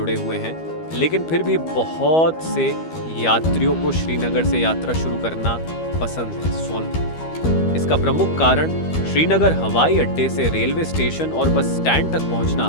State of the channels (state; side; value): late; right; 12 ms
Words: हुए हैं, लेकिन फिर भी बहुत से यात्रियों को श्रीनगर से यात्रा शुरू करना पसंद है। इसका प्रमुख कारण श्रीनगर हवाई अड्डे से रेलवे स्टेशन और बस स्टैंड तक पहुंचना